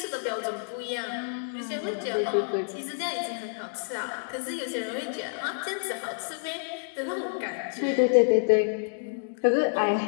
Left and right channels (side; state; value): right; silent; digital silence